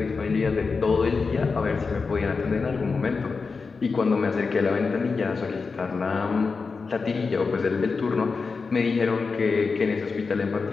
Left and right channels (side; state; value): right; quieter; 4.6 dB